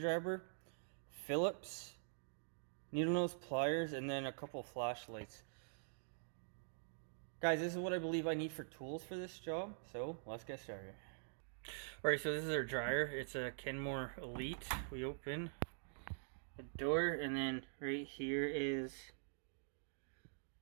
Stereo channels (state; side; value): silent; left; digital silence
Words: Phillips, needle nose pliers, and then a couple flashlights. Guys, this is what I believe I need for tools for this job, so let's get started. Alright, so this is our dryer. It's a Kenmore Elite. We open the door, and then right here is